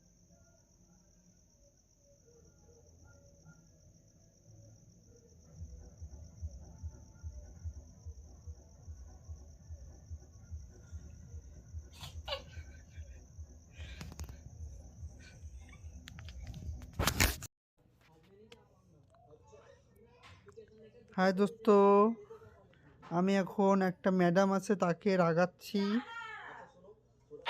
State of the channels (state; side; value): identical; both; correlation 1.00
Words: হাই দোস্ত, আমি এখন একটা ম্যাডাম আছে তাকে রাগাচ্ছি।